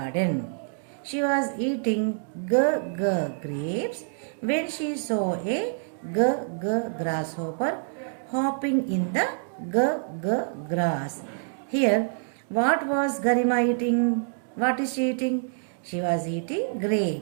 She was eating G, G grapes when she saw a G, G grasshopper hopping in the G, G grass. Here, what was Garima eating? What is she eating? She was eating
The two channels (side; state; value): left; silent; digital silence